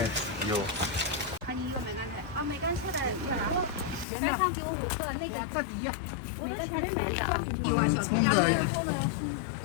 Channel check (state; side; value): drops out; right; at 4.0 s